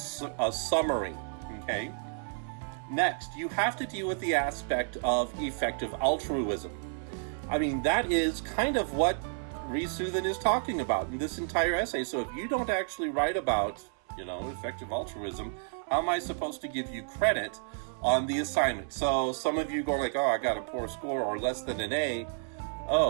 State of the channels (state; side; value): silent; left; 57 dB below the other